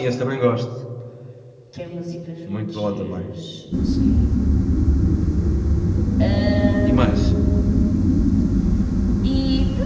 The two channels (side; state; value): both; identical; correlation 1.00